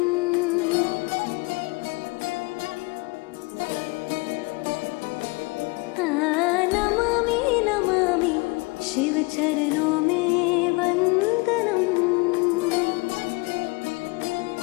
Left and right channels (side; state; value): right; quieter; 26.3 dB